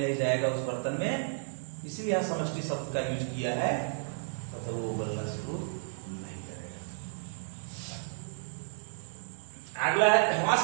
नहीं जाएगा उस बर्तन में, इसलिए यहां समष्टि शब्द का यूज किया है, तब तक वो उबलना शुरू नहीं करेगा। अगला है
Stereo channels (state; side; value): silent; left; digital silence